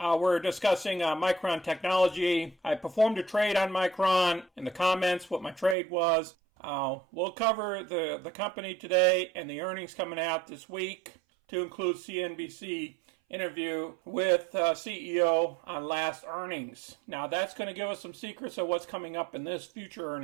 discussing Micron Technology. I performed a trade on Micron. In the comments what my trade was. We'll cover the company today and the earnings coming out this week, to include CNBC interview with CEO on last earnings. Now that's going to give us some secrets of what's coming up in this future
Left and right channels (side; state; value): left; drops out; at 5.8 s